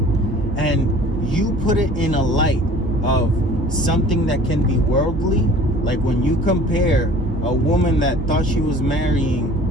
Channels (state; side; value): normal; both; correlation 0.47